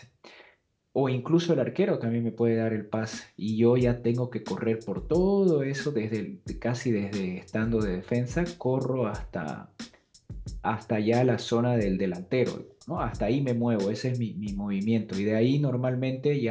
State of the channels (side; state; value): both; identical; correlation 1.00